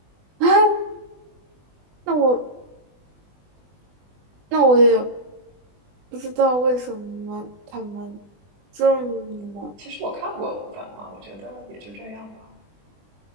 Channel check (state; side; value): late; left; 20 ms